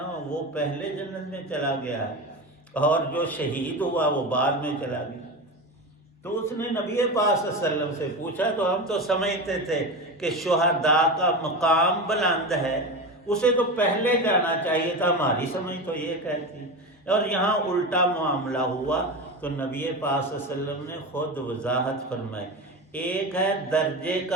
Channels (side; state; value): both; normal; correlation 0.23